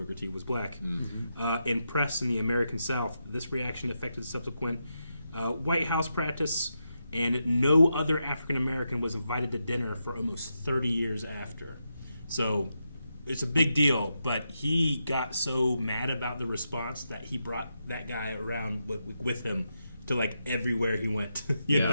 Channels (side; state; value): both; inverted; correlation -0.85